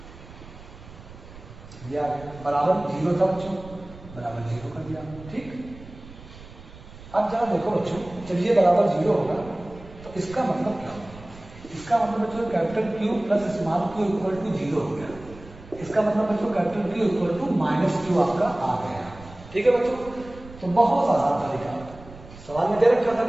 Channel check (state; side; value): noise; right; rumble, 18 dB below the sound